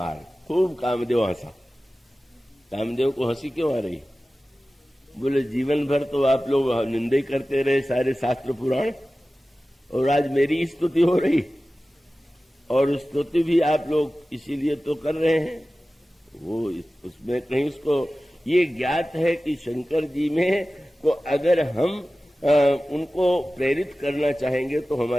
खूब कामदेव हंसा। कामदेव को हंसी क्यों आ रही? बोले जीवन भर तो आप लोग निंदा करते रहे सारे शास्त्र पुराण, और आज मेरी स्तुति हो रही, और स्तुति भी आप लोग इसीलिए तो कर रहे हैं। वो उसमें कहीं उसको ये ज्ञात है कि शंकर जी में को अगर हम उनको प्रेरित करना चाहेंगे तो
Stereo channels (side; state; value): both; normal; correlation 0.96